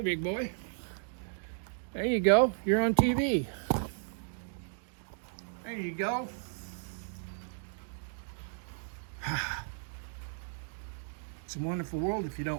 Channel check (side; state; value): left; silent; digital silence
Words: boy. There you go. You're on TV. There you go. It's a wonderful world if you